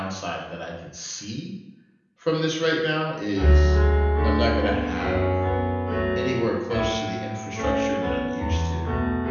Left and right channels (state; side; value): identical; both; correlation 1.00